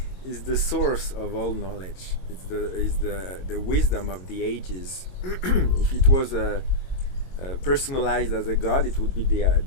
is the source of all knowledge. It's the wisdom of the ages. If it was personalized as a god, it would be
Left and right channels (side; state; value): right; late; 22 ms